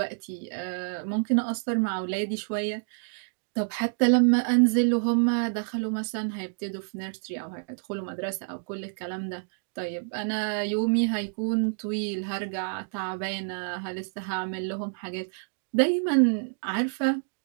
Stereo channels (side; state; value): left; silent; digital silence